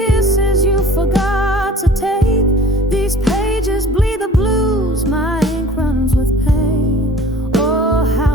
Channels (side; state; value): both; normal; correlation 0.47